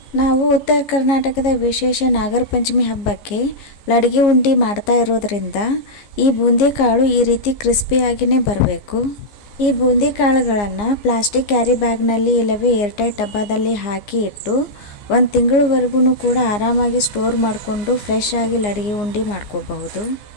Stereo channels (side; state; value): right; late; 15 ms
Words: ನಾವು ಉತ್ತರ ಕರ್ನಾಟಕದ ವಿಶೇಷ ನಾಗರ ಪಂಚಮಿ ಹಬ್ಬಕ್ಕೆ ಲಡಗಿ ಉಂಡಿ ಮಾಡ್ತಾ ಇರೋದ್ರಿಂದ ಈ ಬೂಂದಿ ಕಾಳು ಈ ರೀತಿ ಕ್ರಿಸ್ಪಿಯಾಗಿಯೇ ಬರಬೇಕು. ಈ ಬೂಂದಿ ಕಾಳುಗಳನ್ನು ಪ್ಲಾಸ್ಟಿಕ್ ಕ್ಯಾರಿ ಬ್ಯಾಗ್ನಲ್ಲಿ ಇಲ್ಲವೇ ಏರ್ಟೈಟ್ ಡಬ್ಬದಲ್ಲಿ ಹಾಕಿ ಇಟ್ಟು 1 ತಿಂಗಳವರೆಗೂ ಕೂಡ ಆರಾಮಾಗಿ ಸ್ಟೋರ್ ಮಾಡಿಕೊಂಡು ಫ್ರೆಶ್ ಆಗಿ ಲಡಗಿ ಉಂಡಿ ಮಾಡ್ಕೋಬಹುದು.